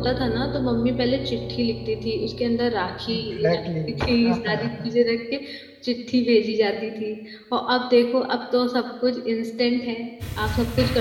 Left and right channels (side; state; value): both; identical; correlation 1.00